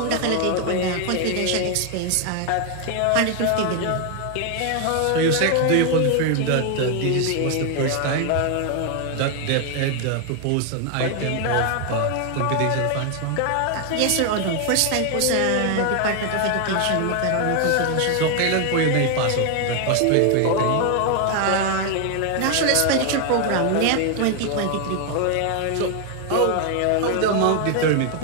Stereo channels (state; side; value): different; both; correlation 0.00